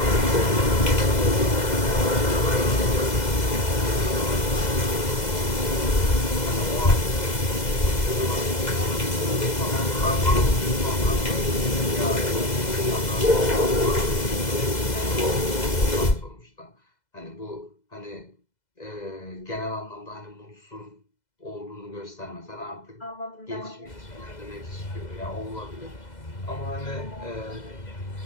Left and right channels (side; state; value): right; late; 2.0 ms